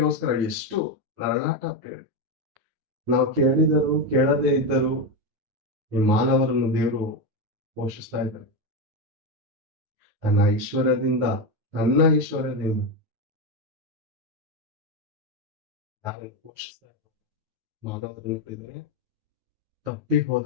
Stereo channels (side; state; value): left; late; 9.3 ms